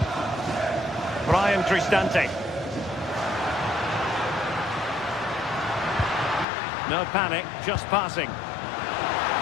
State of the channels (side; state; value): right; drops out; at 6.5 s